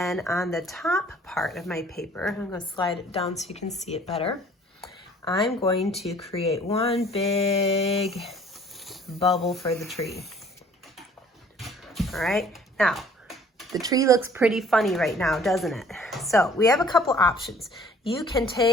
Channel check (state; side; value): normal; both; correlation 0.54